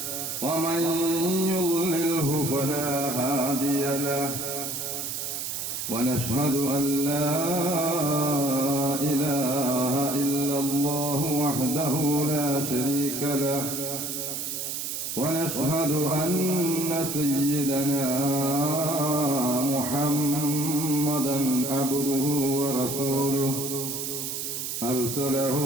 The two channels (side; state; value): right; noise; hiss, 4 dB below the sound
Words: ومن يضلله فلا هادي له ونشهد أن لا إله إلا الله وحده لا شريك له ونشهد أن سيدنا محمدا عبده ورسوله أرسله